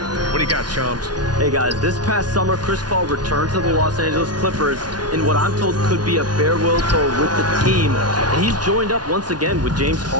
do you got, Shams? Hey, guys, this past summer, Chris Paul returned to the Los Angeles Clippers in what I'm told could be a farewell tour with the team. And he's joined up once again with James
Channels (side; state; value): left; late; 0.69 ms